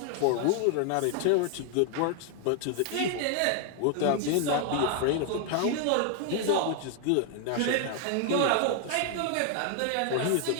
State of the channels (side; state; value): both; different; correlation 0.00